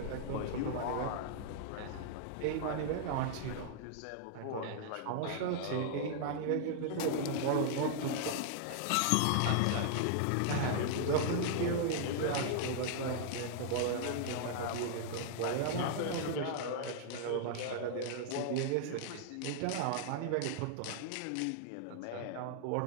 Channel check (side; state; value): both; different; correlation -0.01